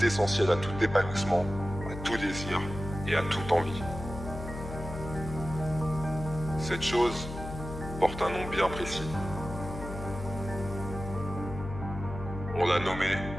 à tout épanouissement, à tout désir et à toute envie. Cette chose porte un nom bien précis. On l'a nommé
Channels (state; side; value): noise; left; hum, 9 dB below the sound